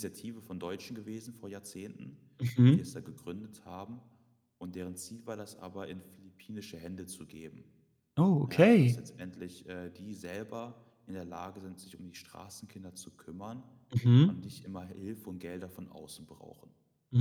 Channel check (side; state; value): both; identical; correlation 1.00